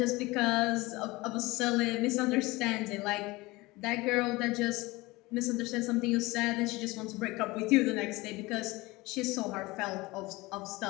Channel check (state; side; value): quieter; right; 21.7 dB